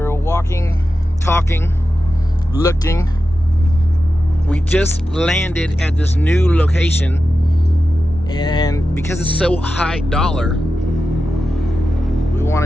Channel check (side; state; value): both; normal; correlation 0.92